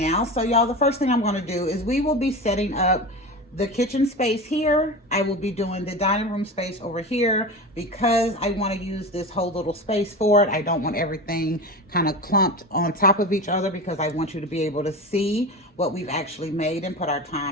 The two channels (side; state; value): both; normal; correlation 0.27